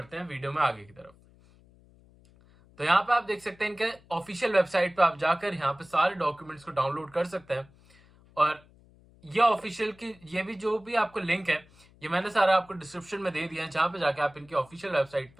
हैं वीडियो में आगे की तरफ। तो यहाँ पे आप देख सकते हैं इनके ऑफिशियल वेबसाइट पे आप जाकर यहाँ पे सारे डॉक्यूमेंट्स को डाउनलोड कर सकते हैं। और ये ऑफिशियल की ये भी जो भी आपको लिंक है ये मैंने सारा आपको डिस्क्रिप्शन में दे दिया है, जहाँ पे जाके आप इनकी ऑफिशियल वेबसाइट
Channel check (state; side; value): noise; left; hum, 27 dB below the sound